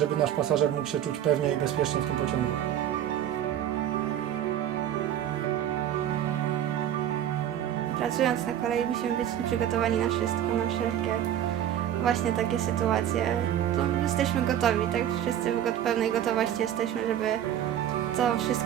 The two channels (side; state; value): left; quieter; 10.8 dB